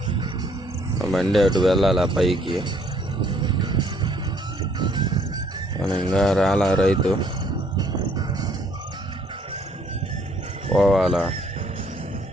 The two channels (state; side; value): normal; both; correlation 0.64